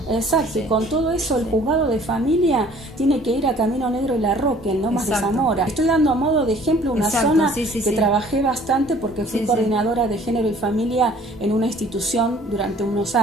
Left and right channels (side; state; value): both; normal; correlation 0.54